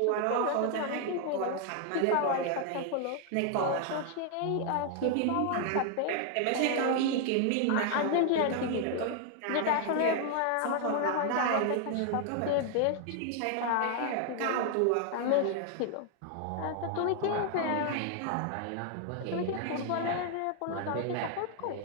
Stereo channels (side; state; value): both; different; correlation 0.00